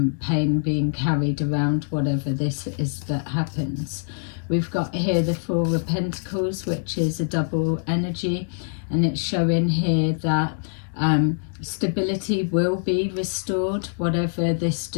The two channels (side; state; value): right; silent; digital silence